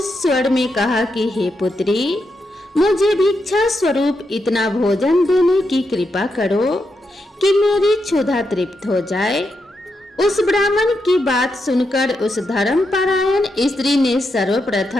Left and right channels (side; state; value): both; normal; correlation 0.84